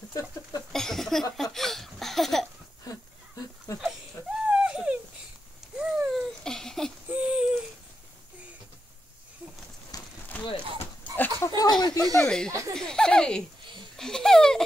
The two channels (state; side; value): normal; both; correlation 0.87